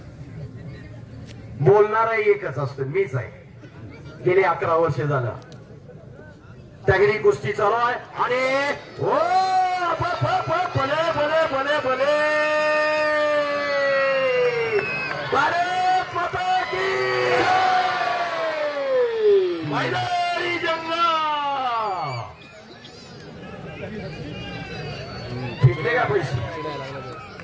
बोलणारा एकच असतो मीच आहे. गेले 11 वर्ष झालं. दगडी कुस्ती चालू आहे आणि भले भले भले भले भारत माता की मैदानी जंग. फिरले का पैसे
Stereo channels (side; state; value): both; identical; correlation 1.00